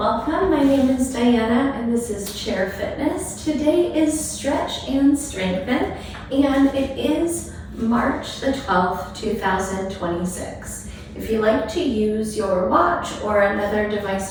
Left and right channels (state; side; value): identical; both; correlation 1.00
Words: My name is Diana and this is Chair Fitness. Today is Stretch and Strengthen and it is March the 12th, 2026. If you like to use your watch or another